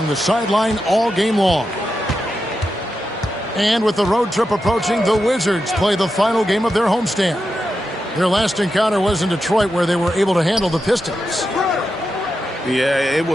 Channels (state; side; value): normal; both; correlation 0.88